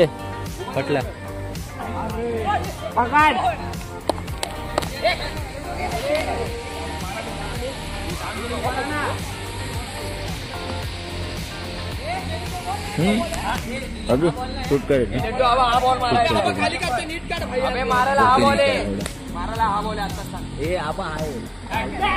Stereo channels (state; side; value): identical; both; correlation 1.00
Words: पटल्या. अभी शूट करेल.